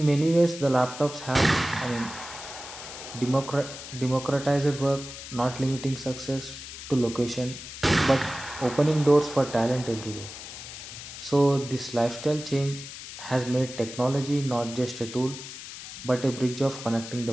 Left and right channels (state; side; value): noise; left; hiss, 12 dB below the sound